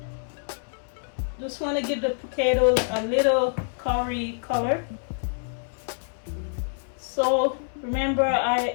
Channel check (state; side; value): silent; right; 60 dB below the other